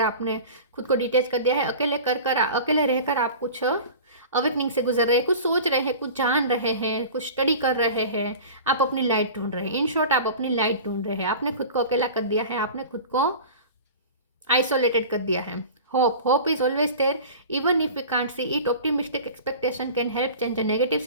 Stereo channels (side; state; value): both; inverted; correlation -0.37